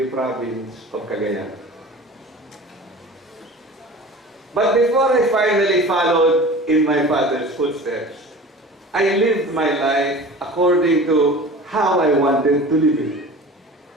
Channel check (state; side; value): normal; both; correlation 0.39